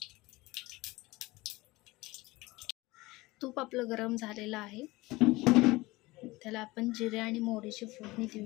तूप आपलं गरम झालेलं आहे, त्याला आपण जिरे आणि मोहरीची फोडणी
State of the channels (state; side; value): quieter; right; 20.8 dB